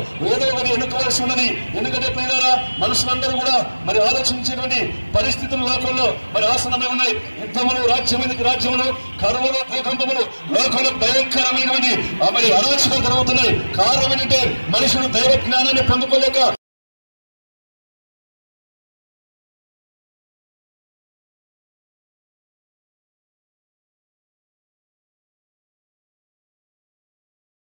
ఏదో ఒకటి ఎన్నుకోవాల్సి ఉన్నది. ఎందుకంటే ప్రియులారా, మనుషులందరూ కూడా మరి ఆలోచించేటువంటి పరిస్థితులు లోకంలో మరి ఆసనమే ఉన్నాయి. యుద్ధములు, రాజ్యములు, కరువులు, భూకంపములు లోకంలో భయంకరమైనటువంటి మరి అరాచకాలు జరుగుతున్నాయి. కారణం ఏంటంటే మనుషుడు దైవ జ్ఞానాన్ని పొందుకోలేక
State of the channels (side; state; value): both; inverted; correlation -1.00